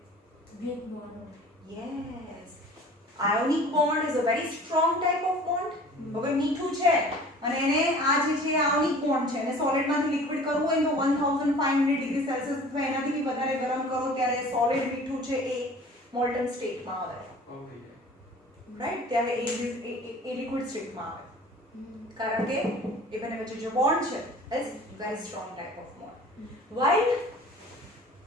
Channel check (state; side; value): normal; both; correlation 0.45